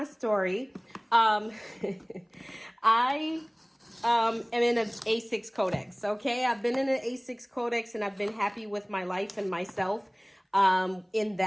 story. I am in an A6 codex. Okay, I've been in an A6 codex and I've been happy with my life and myself in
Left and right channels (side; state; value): both; identical; correlation 1.00